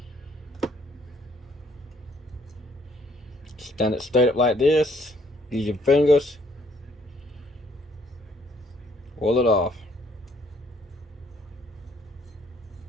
Stand it straight up like this. Use your fingers. Roll it off.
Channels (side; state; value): both; normal; correlation 0.65